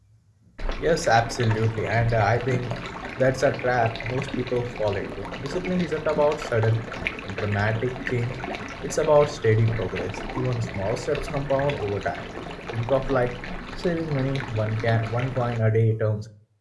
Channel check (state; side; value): identical; both; correlation 1.00